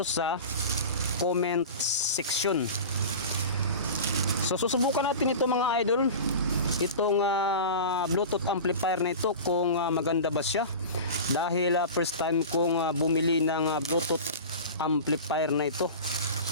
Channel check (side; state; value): both; inverted; correlation -0.32